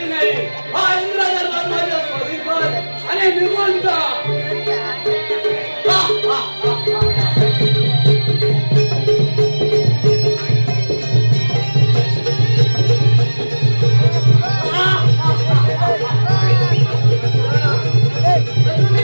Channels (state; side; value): inverted; both; correlation -1.00